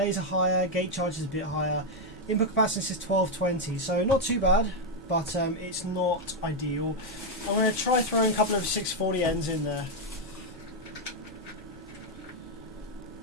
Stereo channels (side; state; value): both; normal; correlation 0.02